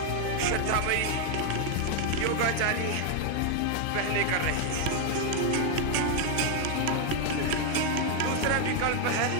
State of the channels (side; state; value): both; different; correlation 0.01